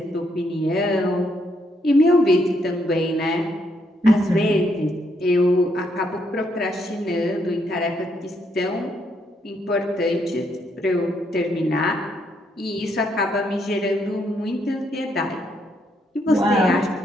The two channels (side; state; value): both; normal; correlation 0.75